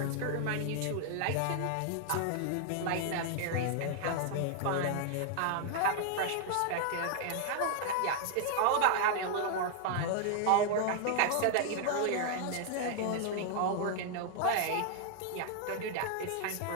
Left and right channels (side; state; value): both; different; correlation 0.00